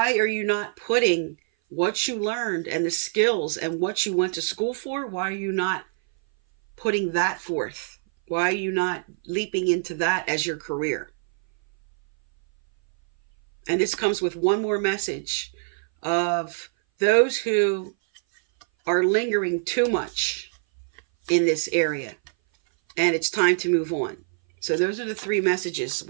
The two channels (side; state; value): left; silent; 59 dB below the other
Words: are you not putting what you learned and the skills and what you went to school for? Why are you not putting that forth? Why are you not leaping into that as your career? And this comes with one more message of those who are lingering too much in this area. And it's time to move on. So those are the three messages